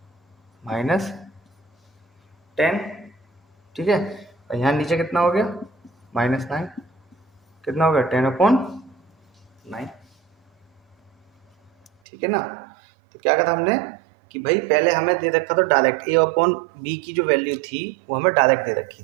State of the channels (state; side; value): drops out; left; at 11.9 s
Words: माइनस 10, ठीक है। और यहाँ नीचे कितना हो गया माइनस 9, कितना हो गया 10 अपॉन 9, ठीक है ना। तो क्या कहा हमने कि भाई पहले हमें दे रखा था डायरेक्ट a अपॉन b की जो वैल्यू थी वो हमें डायरेक्ट दे रखी